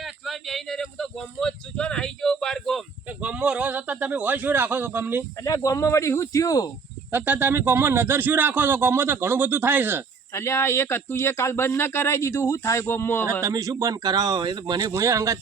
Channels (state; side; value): quieter; left; 5.2 dB